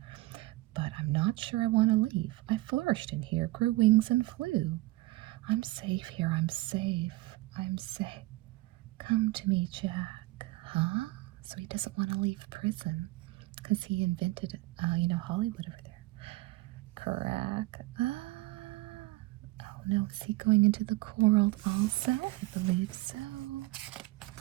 But I'm not sure I want to leave. I flourished in here, grew wings and flew. I'm safe here. I'm safe. I'm safe. Come to me, Jack." Huh? So he doesn't want to leave prison because he invented, Hollywood over there. Crack. Oh no, is he going into the cool world also? I believe so.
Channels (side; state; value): left; quieter; 19.6 dB